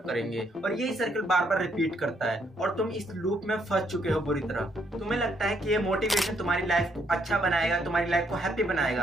करेंगे, और यही सर्कल बार बार रिपीट करता है और तुम इस लूप में फंस चुके हो बुरी तरह। तुम्हें लगता है कि ये मोटिवेशन तुम्हारी लाइफ को अच्छा बनाएगा, तुम्हारी लाइफ को हैप्पी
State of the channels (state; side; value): normal; both; correlation 0.72